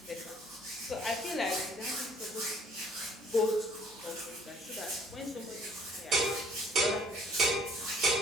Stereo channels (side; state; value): both; normal; correlation 0.57